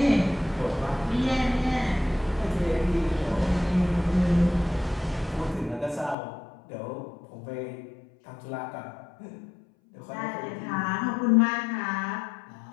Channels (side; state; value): right; drops out; at 6.2 s